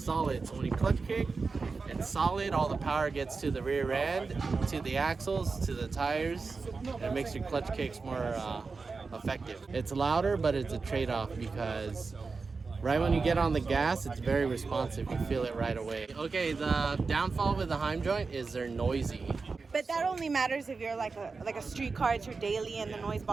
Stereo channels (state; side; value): quieter; left; 4.4 dB